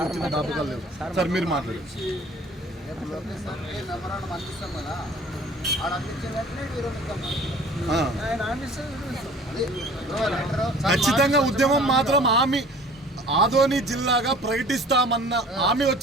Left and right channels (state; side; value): normal; both; correlation 0.48